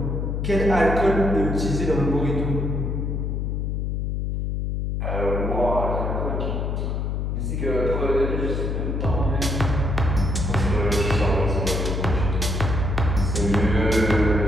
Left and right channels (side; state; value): left; noise; hum, 1 dB below the sound